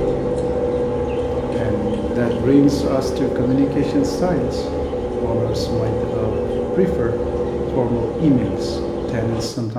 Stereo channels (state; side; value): identical; both; correlation 1.00